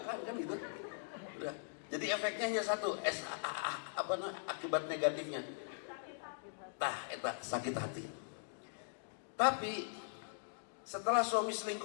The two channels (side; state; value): right; silent; digital silence